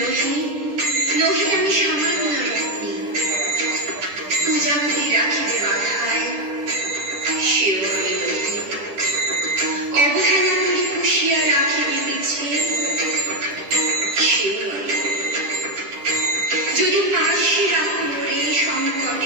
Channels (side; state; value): left; late; 10 ms